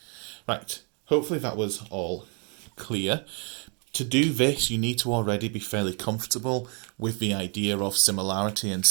Right, hopefully that was all clear. To do this, you need to already be fairly comfortable with the idea of similarity and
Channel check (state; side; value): quieter; left; 37.3 dB